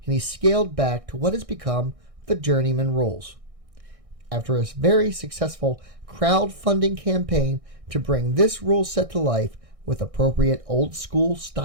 and he scaled back to what has become the Journeymanne Rules. After a very successful crowdfunding campaign to bring this rule set to life with appropriate old school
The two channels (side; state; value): left; late; 1.6 ms